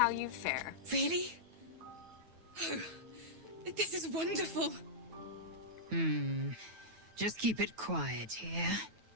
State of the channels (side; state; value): left; late; 9.2 ms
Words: you fare. Really? Oh, this is wonderful. Just keep it quiet here.